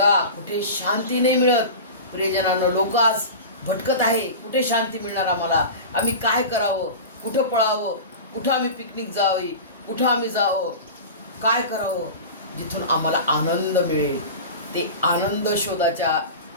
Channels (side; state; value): both; inverted; correlation -0.31